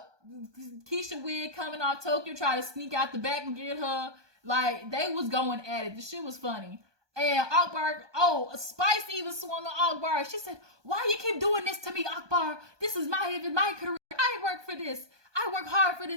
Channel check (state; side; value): late; left; 1.2 ms